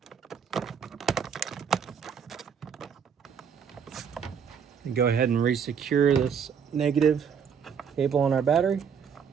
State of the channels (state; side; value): quieter; left; 7.1 dB